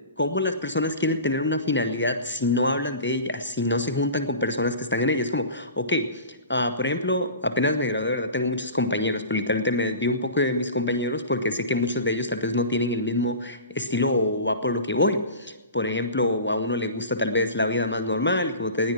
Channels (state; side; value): inverted; both; correlation -0.35